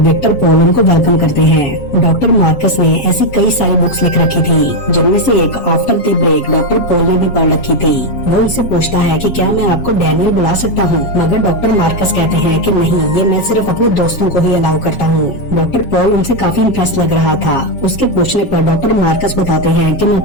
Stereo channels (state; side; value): late; right; 7.3 ms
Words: विक्टर पॉल उनको वेलकम करते हैं। डॉक्टर मार्कस ने ऐसी कई सारी बुक्स लिख रखी थी जिनमें से एक after the break doctor Paul ने भी पढ़ रखी थी। वो उनसे पूछता है कि क्या मैं आपको डैनियल बुला सकता हूँ, मगर डॉक्टर मार्कस कहते हैं कि नहीं, ये मैं सिर्फ अपने दोस्तों को ही अलाउ करता हूँ। डॉक्टर पॉल उनसे काफी इंप्रेस लग रहा था। उसके पूछने पर डॉक्टर मार्कस बताते हैं कि मैं